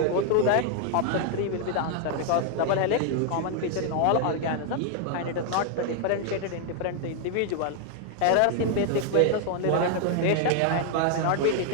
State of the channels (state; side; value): different; both; correlation 0.00